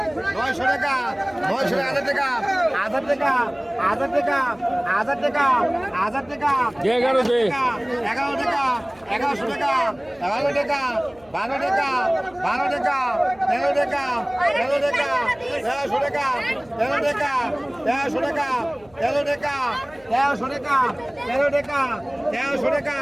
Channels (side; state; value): left; noise; hum, 28 dB below the sound